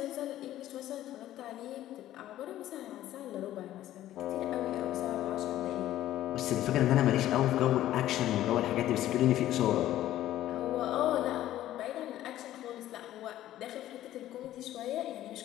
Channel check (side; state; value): right; quieter; 13.5 dB